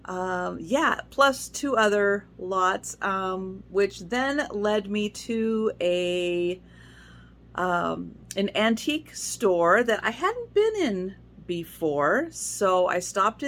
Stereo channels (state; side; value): identical; both; correlation 1.00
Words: Yeah, plus 2 other lots, which then led me to an antique store that I hadn't been in before. So I stopped